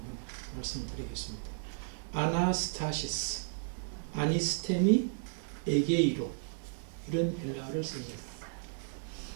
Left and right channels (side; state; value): left; silent; digital silence